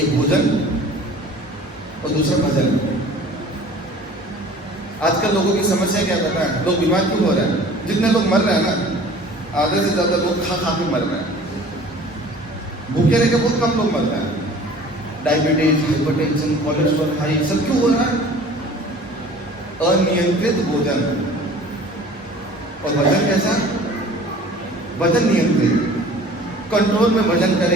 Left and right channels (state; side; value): normal; both; correlation 0.47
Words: भोजन और दूसरा भजन। आजकल लोगों की समस्या क्या पता है? लोग बीमार क्यों हो रहे हैं? जितने लोग मर रहे हैं ना, आधे से ज्यादा लोग खा खा के मर रहे हैं। भूखे रह के बहुत कम लोग मरते हैं। डायबिटीज, हाइपरटेंशन, कोलेस्ट्रॉल हाई, सब क्यों हो रहा है? अनियंत्रित भोजन। और वजन कैसा? वजन नियंत्रित, कंट्रोल में वजन